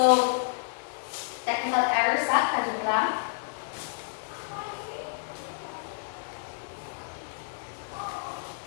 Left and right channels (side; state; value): right; silent; digital silence